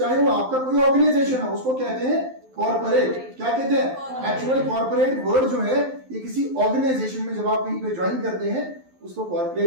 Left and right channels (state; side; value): late; left; 12 ms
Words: वो आपका कोई ऑर्गेनाइजेशन हो, उसको कहते हैं कॉर्पोरेट। क्या कहते हैं? एक्चुअल कॉर्पोरेट वर्ड जो है ये किसी ऑर्गेनाइजेशन में जब आप कहीं पे ज्वाइन करते हैं उसको